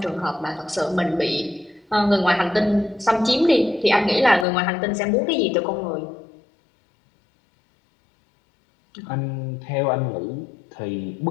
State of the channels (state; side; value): drops out; right; at 4.5 s